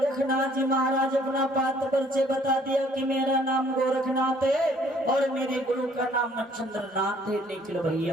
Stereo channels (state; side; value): normal; both; correlation 0.60